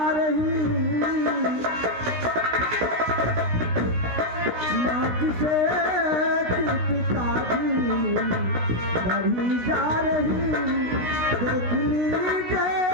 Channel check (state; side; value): late; left; 16 ms